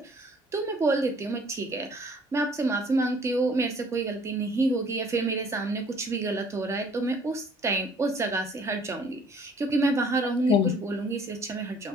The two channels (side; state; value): both; normal; correlation 0.57